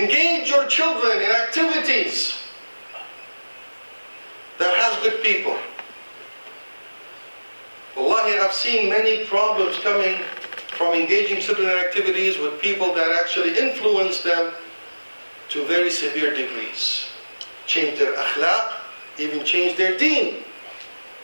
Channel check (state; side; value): inverted; both; correlation -1.00